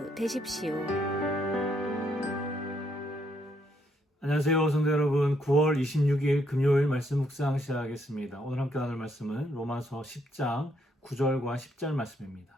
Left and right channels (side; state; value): both; normal; correlation 0.73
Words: 되십시오. 안녕하세요, 성도 여러분. 9월 26일 금요일 말씀 묵상 시작하겠습니다. 오늘 함께 나눌 말씀은 로마서 10장 9절과 10절